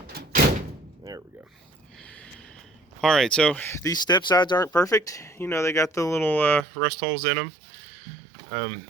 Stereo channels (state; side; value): drops out; left; at 6.7 s